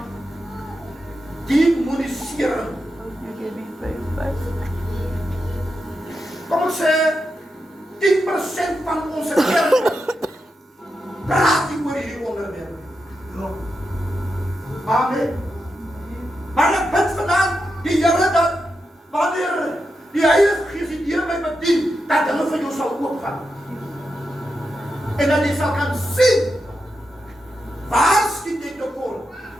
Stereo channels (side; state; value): both; normal; correlation 0.87